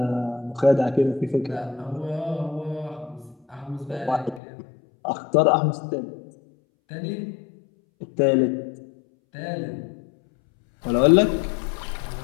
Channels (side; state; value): right; drops out; at 4.4 s